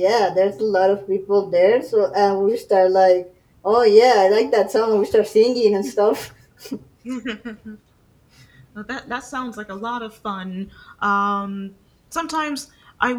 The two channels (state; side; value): identical; both; correlation 1.00